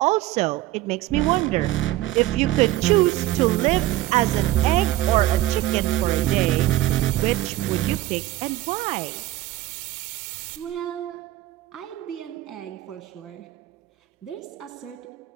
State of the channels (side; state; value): left; quieter; 15.5 dB